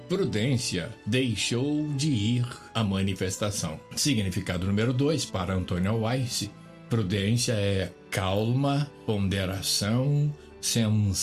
prudência, deixou de ir à manifestação. Significado número 2 para Antonio Wise. Prudência é calma, ponderação,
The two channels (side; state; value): both; identical; correlation 1.00